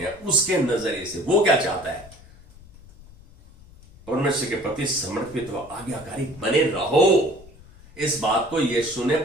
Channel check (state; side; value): noise; left; rumble, 22 dB below the sound